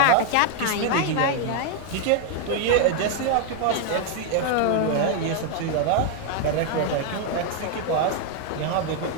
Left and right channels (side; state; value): both; different; correlation 0.00